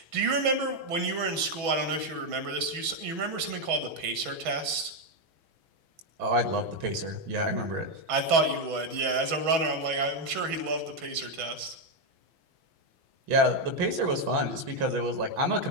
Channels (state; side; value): late; left; 6.1 ms